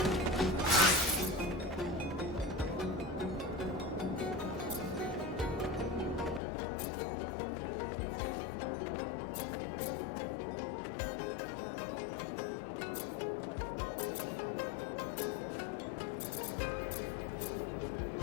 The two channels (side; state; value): right; drops out; at 6.4 s